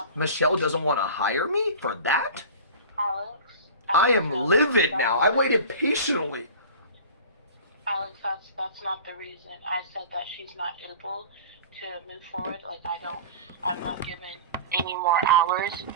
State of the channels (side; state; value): both; inverted; correlation -0.37